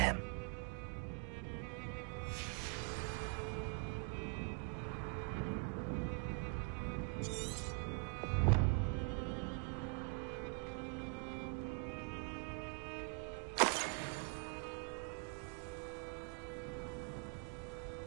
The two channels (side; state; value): left; quieter; 35.0 dB